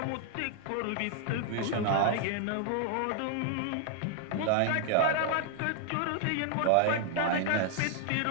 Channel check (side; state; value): both; different; correlation 0.00